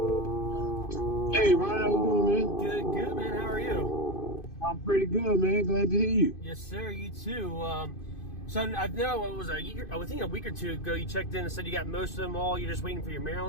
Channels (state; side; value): late; right; 2.5 ms